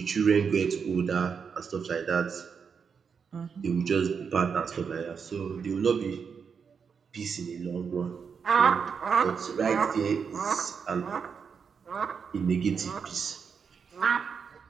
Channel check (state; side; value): quieter; left; 6.2 dB